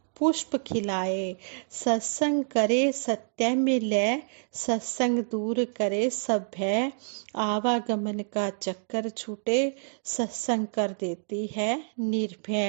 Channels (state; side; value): silent; left; digital silence